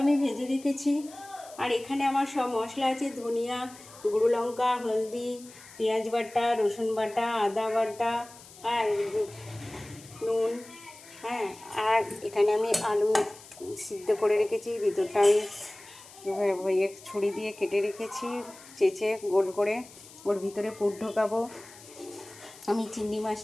আমি ভেজে রেখেছি। আর এখানে আমার সব মশলা আছে: ধনিয়া, গুঁড়ো লঙ্কা, হলদি, পেঁয়াজ বাটা, রসুন বাটা, আদা বাটা, আর নুন। হ্যাঁ, আর এখানে আমি আলু সিদ্ধ করে রেখেছি, ভিতরটা আমি ছুরি দিয়ে কেটে রেখেছি, চেঁচে গোল করে ওর ভিতরে পুর ঢোকাবো। আমি চিংড়ি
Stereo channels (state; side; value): noise; left; hiss, 20 dB below the sound